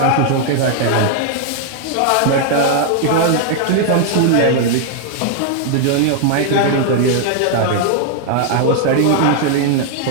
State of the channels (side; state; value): both; different; correlation 0.00